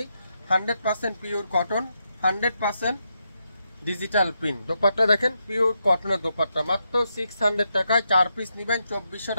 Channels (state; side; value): inverted; both; correlation -0.83